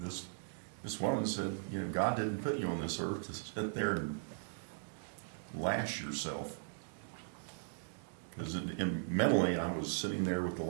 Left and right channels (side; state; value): left; silent; digital silence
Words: This woman said, you know, God didn't put you on this earth to sit there and lash yourself. Because mentally, I was sitting there with the